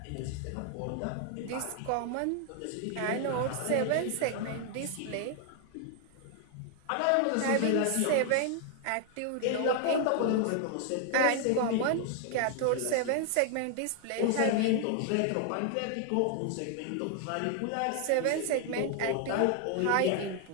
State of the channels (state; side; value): different; both; correlation 0.00